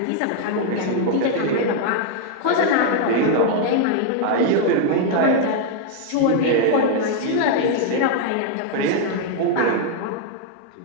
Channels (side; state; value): both; different; correlation 0.00